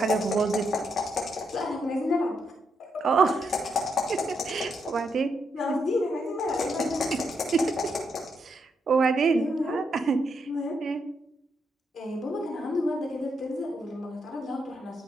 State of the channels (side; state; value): both; normal; correlation 0.80